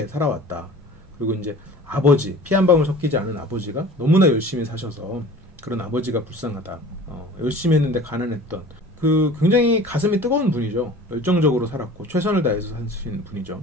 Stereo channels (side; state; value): both; normal; correlation 0.43